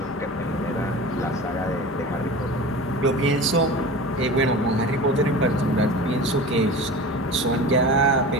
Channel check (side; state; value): both; normal; correlation 0.34